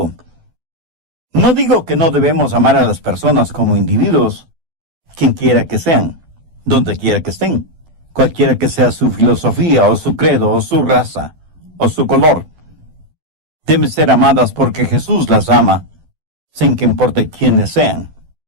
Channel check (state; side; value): late; left; 12 ms